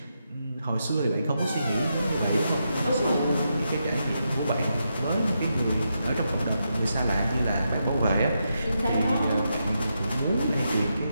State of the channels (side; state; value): both; inverted; correlation -0.84